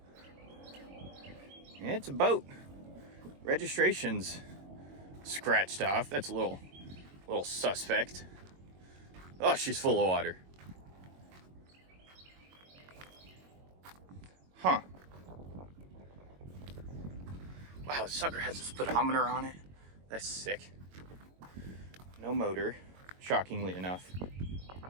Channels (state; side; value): late; left; 22 ms